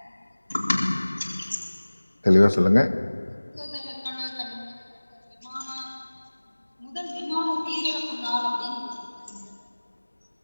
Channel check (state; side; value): inverted; both; correlation -1.00